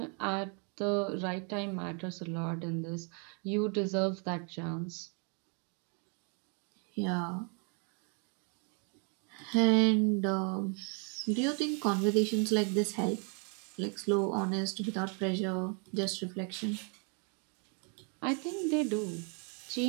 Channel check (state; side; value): quieter; left; 37.9 dB